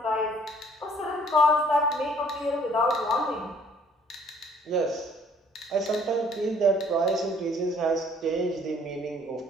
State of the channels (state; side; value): normal; both; correlation 0.59